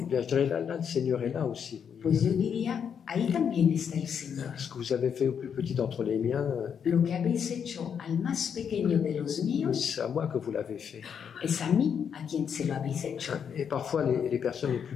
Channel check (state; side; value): quieter; right; 7.5 dB